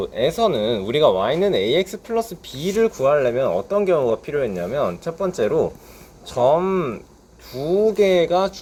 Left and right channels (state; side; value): identical; both; correlation 1.00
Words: 우리가 y는 ax 플러스 b를 구하려면 어떤 경우가 필요했냐면 첫 번째로 점 두 개가